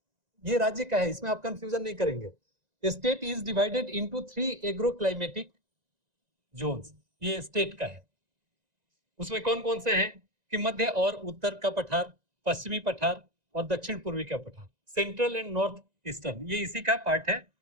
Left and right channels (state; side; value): late; left; 1.9 ms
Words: ये राज्य का है, इसमें आप कंफ्यूजन नहीं करेंगे। State is divided into 3 agro climatic zones, ये स्टेट का है। उसमें कौन कौन से हैं कि मध्य और उत्तर का पठार, पश्चिमी पठार और दक्षिण पूर्वी का पठार, सेंट्रल एंड नॉर्थ ईस्टर्न, ये इसी का पार्ट है।